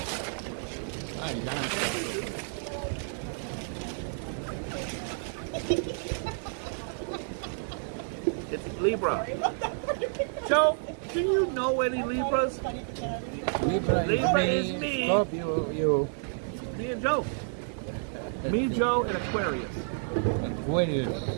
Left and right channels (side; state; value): left; silent; digital silence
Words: It's Libra. Joe, do you know any Libras? Libra is me. Scorpio, you. Me and Joe. Me, Joe, and Aquarius. Aquarius.